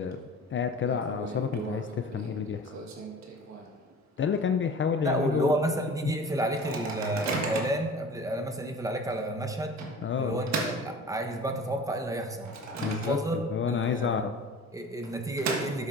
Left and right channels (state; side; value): normal; both; correlation 0.41